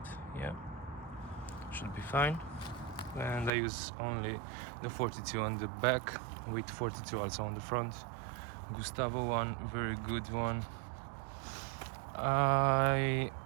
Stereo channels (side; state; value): left; drops out; at 3.5 s